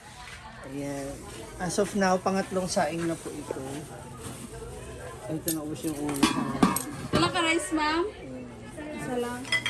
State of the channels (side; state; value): both; identical; correlation 1.00